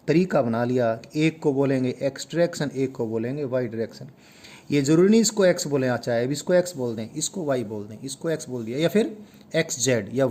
तरीका बना लिया। एक को बोलेंगे एक्स डायरेक्शन, एक को बोलेंगे वाई डायरेक्शन। ये ज़रूरी नहीं इसको एक्स बोलें, चाहे अब इसको एक्स बोल दें, इसको वाई बोल दें, इसको एक्स बोल दिया, या फिर एक्स जेड या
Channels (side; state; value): both; identical; correlation 1.00